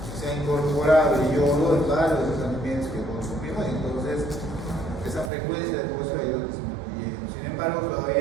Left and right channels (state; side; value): drops out; left; at 5.3 s